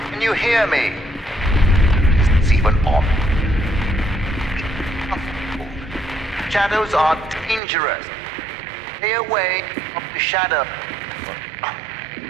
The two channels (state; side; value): drops out; left; at 7.6 s